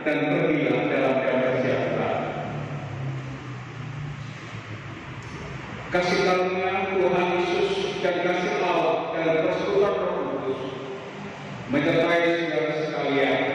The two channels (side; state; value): both; identical; correlation 1.00